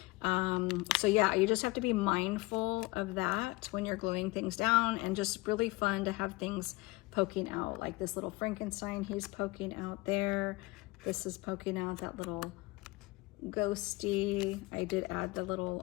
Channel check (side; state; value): right; quieter; 22.2 dB